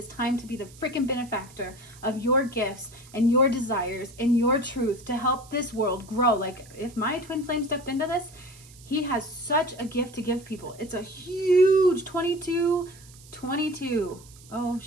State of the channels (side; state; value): right; noise; hiss, 22 dB below the sound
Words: time to be the freaking benefactor of your gifts and your desires and your truth to help this world grow. Like, if my twin flame stepped into this, he has such a gift to give people. It's a huge 22. Oh